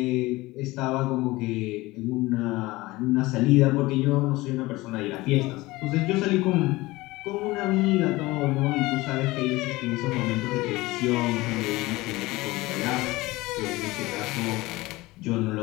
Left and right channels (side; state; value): right; quieter; 20.3 dB